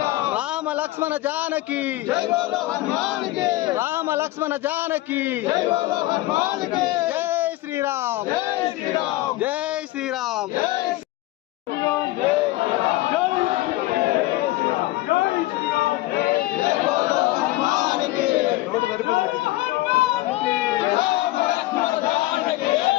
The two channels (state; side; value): quieter; right; 18.0 dB